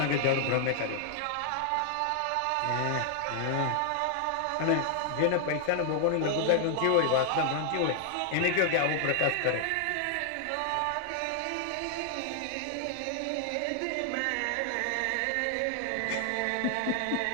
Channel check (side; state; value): both; different; correlation 0.00